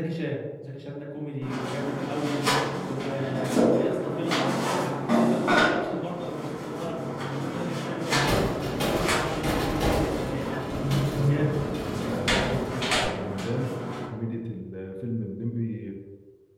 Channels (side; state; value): both; identical; correlation 1.00